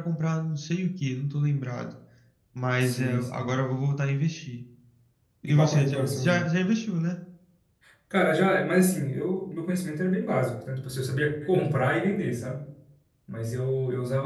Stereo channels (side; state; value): both; identical; correlation 1.00